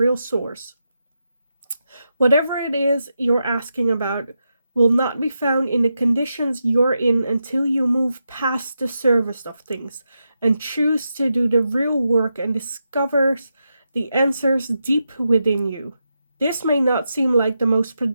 source. Whatever it is you're asking about will not be found in the conditions you're in until you move past the surface of things and choose to do the real work and discover the answers deep within you. This may not seem like the most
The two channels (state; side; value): inverted; both; correlation -0.87